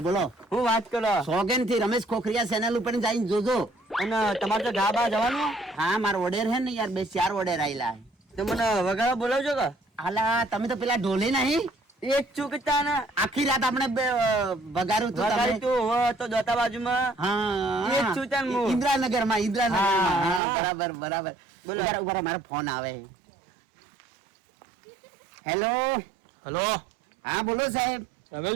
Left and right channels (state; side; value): drops out; left; at 20.4 s